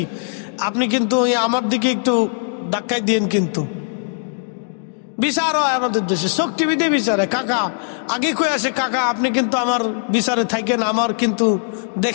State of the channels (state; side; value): silent; right; digital silence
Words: আপনি কিন্তু আমার দিকে একটু ধাক্কাই দিয়েন। কিন্তু বিচার হয় আমাদের দেশে চোখ টিভি দিয়ে বিচারে। কাকা আগে কয়ে আসে, কাকা আপনি কিন্তু আমার বিচারে থাকেন, আমার কিন্তু